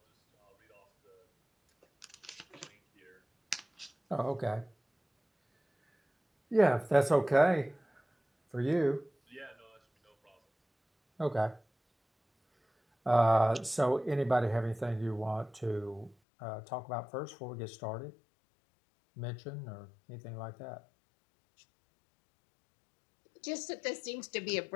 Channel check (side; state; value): right; drops out; at 16.2 s